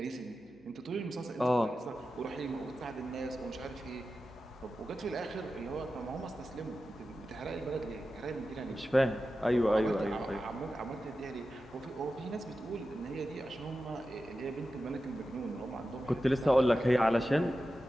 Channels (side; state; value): right; noise; hum, 28 dB below the sound